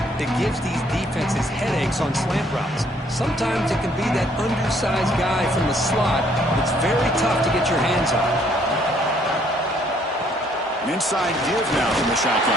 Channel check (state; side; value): normal; both; correlation 0.65